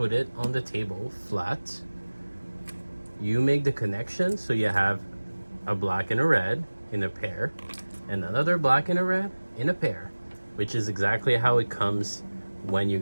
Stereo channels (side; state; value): both; inverted; correlation -1.00